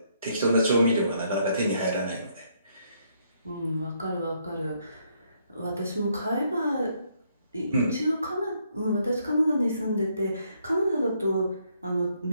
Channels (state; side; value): inverted; both; correlation -0.71